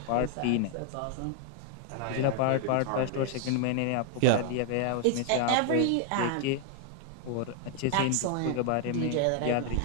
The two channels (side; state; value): both; different; correlation 0.00